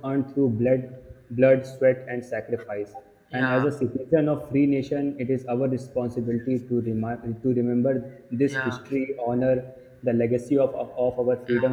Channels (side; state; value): both; identical; correlation 1.00